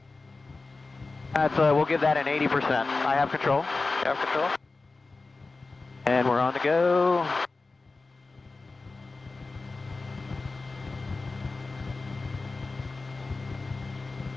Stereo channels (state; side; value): quieter; right; 3.7 dB